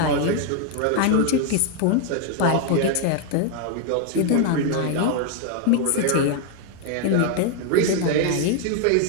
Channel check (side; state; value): both; different; correlation 0.00